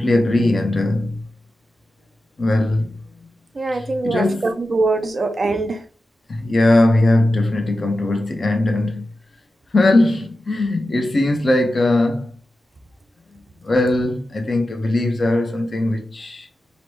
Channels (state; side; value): normal; both; correlation 0.92